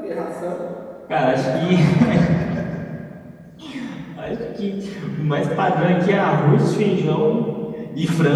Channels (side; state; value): both; identical; correlation 1.00